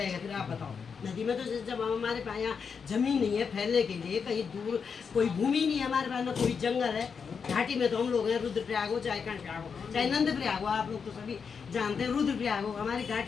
फिर आप बताओ? नदी में तो जब हमारे पास यहाँ जमीन नहीं है फैलने के लिए, कहीं दूर कोई भूमि नहीं है हमारे पास, ना कोई जंगल है, घाटी में तो हम लोग हैं, रुद्रप्रयाग हो चाहे कर्णप्रयाग हो चाहे नंदप्रयाग हो, आप लोग तो सभी जानते हैं रुद्रप्रयाग हो, हमारी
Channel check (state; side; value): quieter; right; 6.1 dB